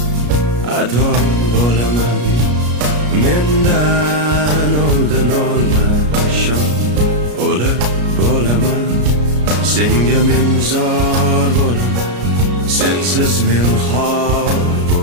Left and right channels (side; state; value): left; late; 33 ms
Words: ado bo'laman. Mendan oldin olma shom, o'lib bo'laman. Senga men zor bo'laman, sensiz men xor